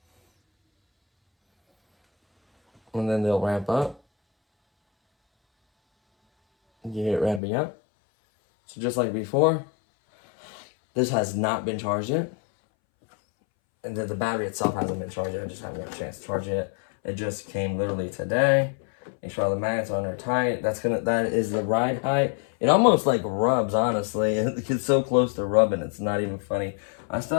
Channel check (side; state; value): right; drops out; at 7.4 s